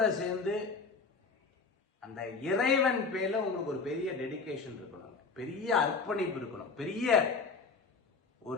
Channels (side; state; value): right; quieter; 4.6 dB